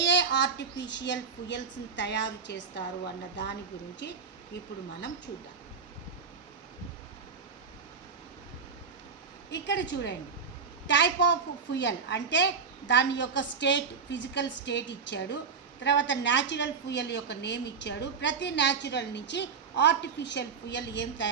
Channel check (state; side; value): quieter; left; 5.6 dB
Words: ఆర్టిఫిషియల్ ఫ్యూయల్స్ని తయారు చేస్తారు అన్న దాని గురించి ఇప్పుడు మనం చూద్దాం. ఇక్కడ చూడండి, టైప్ ఆఫ్ ఫ్యూయల్ అంటే దాని యొక్క స్టేట్, ఫిజికల్ స్టేట్ ఇచ్చాడు. తర్వాత న్యాచురల్ ఫ్యూయల్ యొక్క నేమ్ ఇచ్చాడు. ప్రతి న్యాచురల్ నుంచి ఆర్టిఫిషియల్ ఫ్యూయల్ ఏం